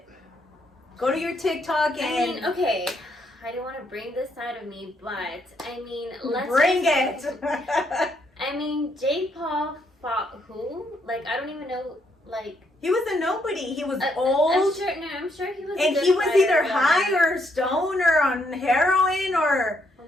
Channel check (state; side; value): normal; both; correlation 0.74